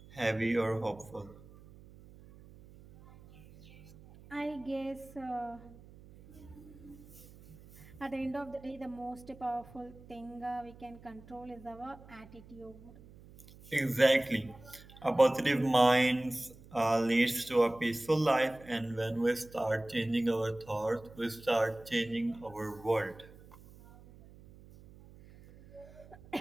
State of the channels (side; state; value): right; noise; hum, 21 dB below the sound